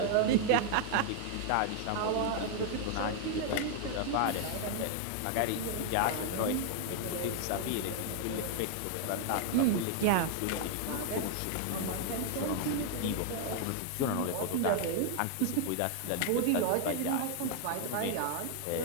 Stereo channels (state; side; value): different; both; correlation 0.00